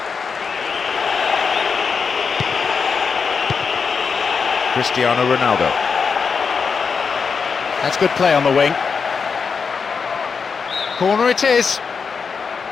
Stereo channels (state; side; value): quieter; right; 5.6 dB